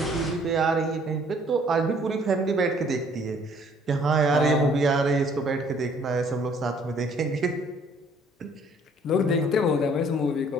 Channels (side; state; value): both; normal; correlation 0.59